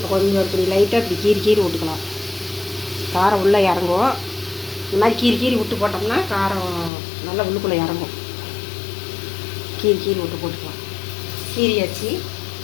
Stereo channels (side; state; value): right; drops out; at 6.9 s